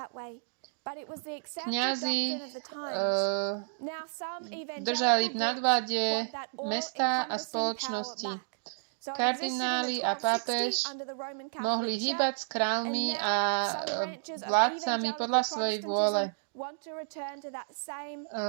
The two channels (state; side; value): silent; left; digital silence